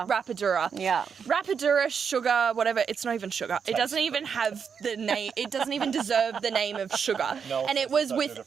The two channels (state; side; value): quieter; left; 6.6 dB